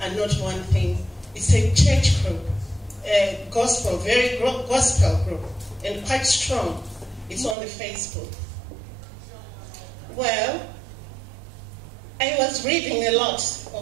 not one thing. It's a church group, a gospel, very gospel group, and quite strong. It's on the Facebook. Well, I was reading a lot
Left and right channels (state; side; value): drops out; left; at 7.6 s